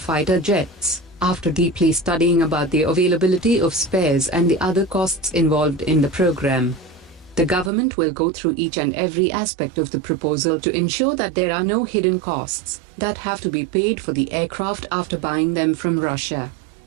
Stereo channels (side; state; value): left; drops out; at 7.7 s